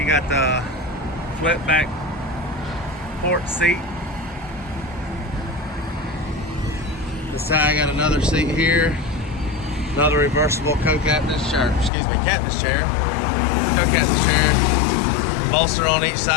got the flip back port seat. This side I got another seat here. Another reversible co-captain's chair. Excuse me, captain's chair. Co-captain's chair. Bolster on each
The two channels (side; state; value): right; drops out; at 11.9 s